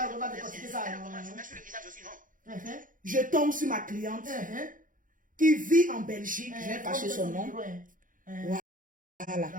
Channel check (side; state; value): left; late; 0.39 ms